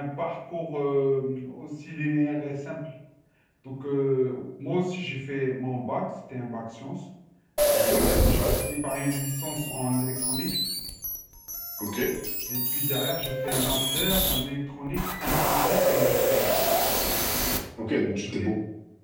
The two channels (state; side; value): identical; both; correlation 1.00